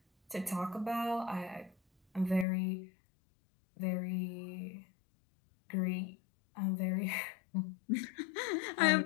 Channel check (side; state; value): right; drops out; at 2.5 s